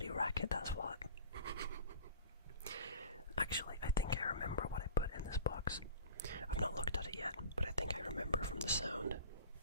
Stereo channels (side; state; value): both; inverted; correlation -0.41